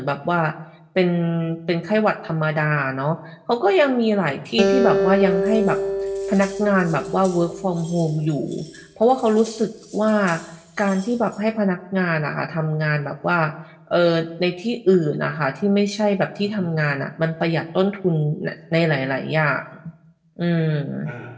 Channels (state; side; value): identical; both; correlation 1.00